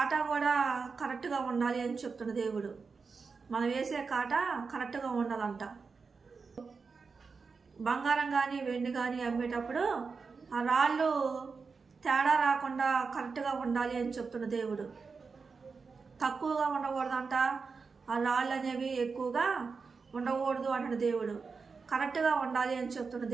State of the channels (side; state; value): left; quieter; 4.9 dB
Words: కూడా కరెక్ట్గా ఉండాలి అని చెప్తున్న దేవుడు. మనం వేసే కాటా కరెక్ట్గా ఉండాలంట. బంగారం కానీ వెండి కానీ అమ్మేటప్పుడు ఆ రాళ్ళు తేడా రాకుండా కరెక్ట్గా ఉండాలి అని చెప్తున్న దేవుడు. తక్కువగా ఉండకూడదంట, ఆ రాళ్ళు అనేవి ఎక్కువగా ఉండకూడదు అంటున్న దేవుడు. కరెక్ట్గా ఉండాలి అని చెప్తున్న